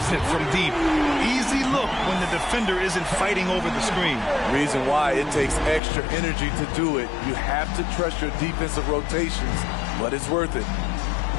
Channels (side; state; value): right; drops out; at 5.8 s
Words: it from deep. Easy look when the defender isn't fighting over the screen. Reason why it takes extra energy to do it. You have to trust your defensive rotations, but it's worth it.